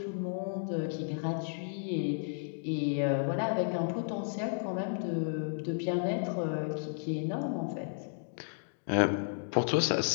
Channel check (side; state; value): right; silent; digital silence